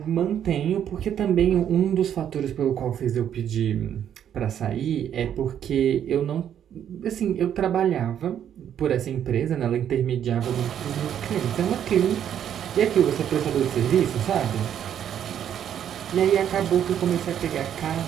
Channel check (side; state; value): left; quieter; 9.6 dB